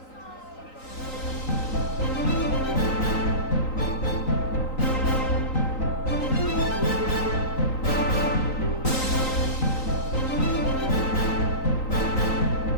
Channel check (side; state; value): right; late; 3.9 ms